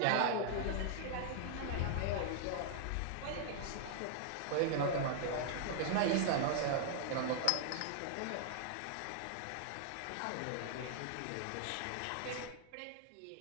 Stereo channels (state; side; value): different; both; correlation 0.00